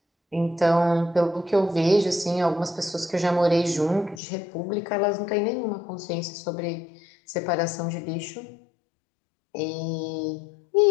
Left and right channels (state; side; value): drops out; right; at 4.2 s